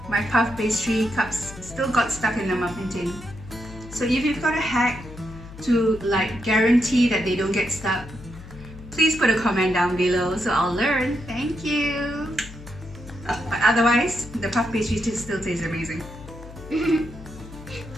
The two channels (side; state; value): left; noise; hum, 16 dB below the sound